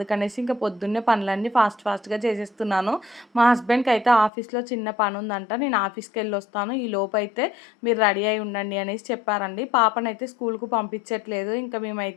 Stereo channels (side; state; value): right; drops out; at 4.3 s